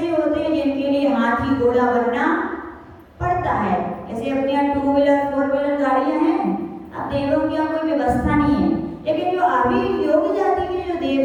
होते हैं जिनके लिए हाथी घोड़ा बनना पड़ता है। जैसे अपने यहाँ 2 व्हीलर 4 व्हीलर गाड़ियां हैं, अब देवों की यहाँ कोई व्यवस्था नहीं है, लेकिन जो आभियोग जाति के जो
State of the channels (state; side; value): identical; both; correlation 1.00